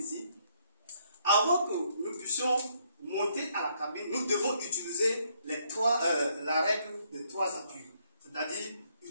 Avant que nous puissions monter à la cabine, nous devons utiliser la règle de 3 appuis. C'est-à-dire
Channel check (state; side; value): inverted; both; correlation -0.71